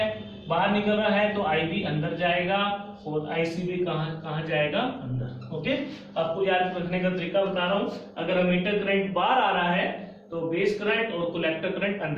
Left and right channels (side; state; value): both; identical; correlation 1.00